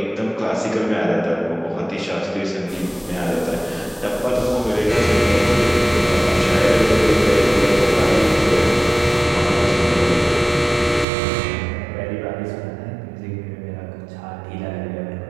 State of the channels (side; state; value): left; drops out; at 11.1 s